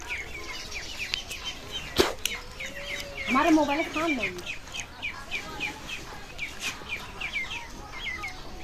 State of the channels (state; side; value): identical; both; correlation 1.00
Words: हमारे मोबाइल खान नहीं